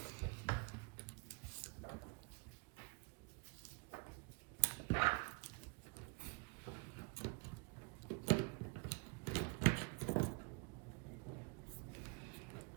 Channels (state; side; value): quieter; left; 32.2 dB